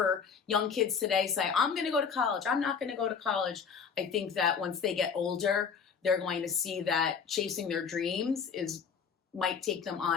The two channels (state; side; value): quieter; right; 6.3 dB